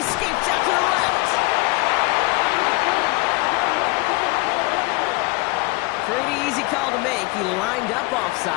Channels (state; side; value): quieter; right; 24.3 dB